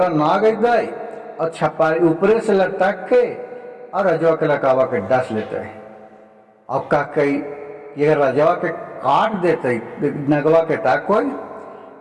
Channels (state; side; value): identical; both; correlation 1.00